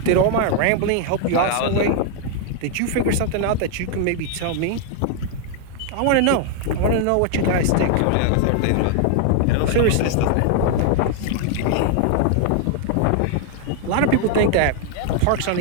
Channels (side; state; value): both; different; correlation 0.00